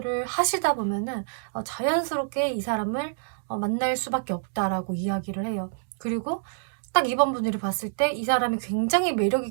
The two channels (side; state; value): left; silent; digital silence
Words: 하시다 보면은 자연스럽게 이 사람을 만날 수밖에 없다라고 이야기를 해요. 그리고 딱 2번 분들이 봤을 때 이 사람이 굉장히